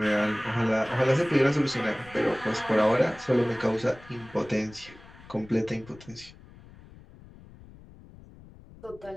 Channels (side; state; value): left; noise; rumble, 21 dB below the sound